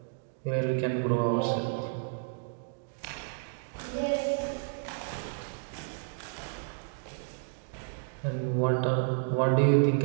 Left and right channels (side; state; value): left; silent; digital silence